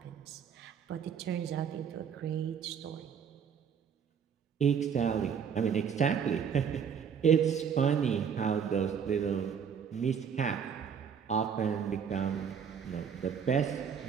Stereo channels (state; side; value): quieter; left; 7.3 dB